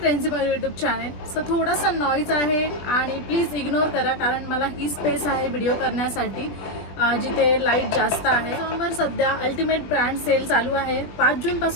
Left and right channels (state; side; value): late; right; 20 ms